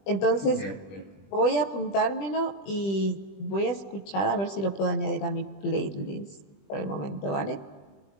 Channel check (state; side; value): late; right; 20 ms